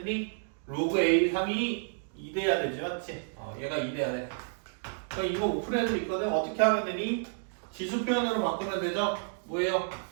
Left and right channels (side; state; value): left; silent; digital silence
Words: 로그 a 3이 2 돼야 되지. 맞지? 얘가 2 돼야 돼. 그럼 이거 오픈해도 있거든. 어떻게 하면 되니? 지수 표현으로 바꾸면 되죠? 뭐예요?